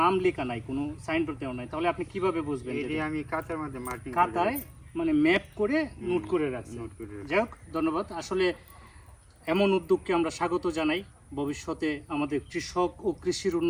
নাম লেখা নাই, কোনো সাইনবোর্ড দেওয়া নাই, তাহলে আপনি কিভাবে বুঝবেন? এই যে আমি কাঁচার মধ্যে মার্কিং খাতায় মানে ম্যাপ করে নোট করে রাখছেন। নোট করে রাখছি। যাই হোক, ধন্যবাদ। আসলে এমন উদ্যোগকে আমরা স্বাগত জানাই। ভবিষ্যতে আমাদের কৃষক ও কৃষির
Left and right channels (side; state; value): both; identical; correlation 1.00